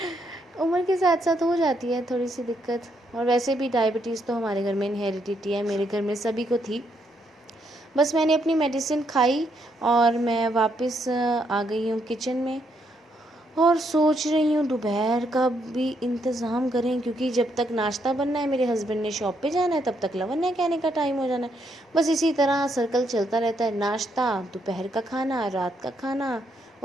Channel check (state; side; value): normal; both; correlation 0.75